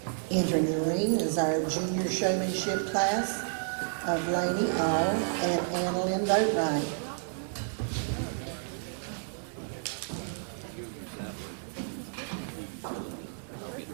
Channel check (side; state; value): left; silent; 57 dB below the other